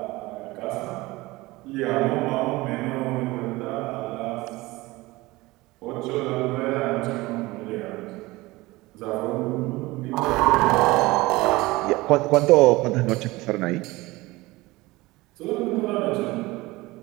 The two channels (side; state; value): left; quieter; 20.6 dB